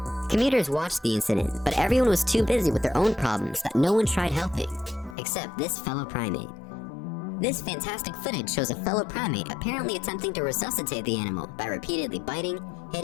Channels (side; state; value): right; drops out; at 5.2 s